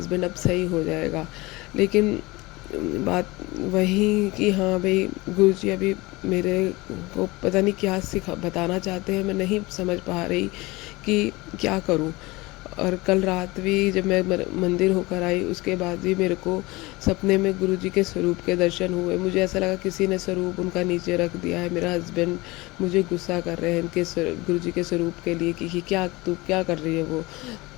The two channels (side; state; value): right; quieter; 22.2 dB